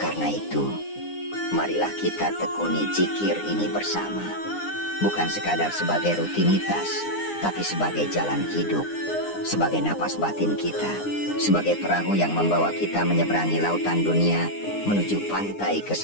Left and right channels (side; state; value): right; late; 9.8 ms